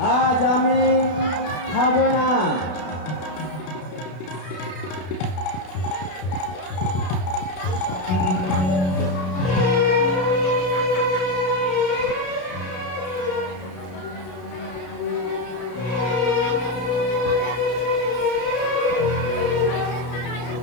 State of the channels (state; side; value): late; right; 33 ms